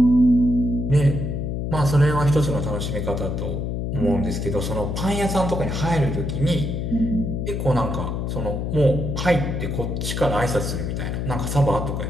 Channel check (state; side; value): noise; left; hum, 2 dB below the sound